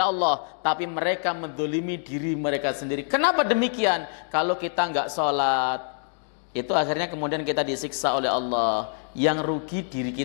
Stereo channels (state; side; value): silent; right; 57 dB below the other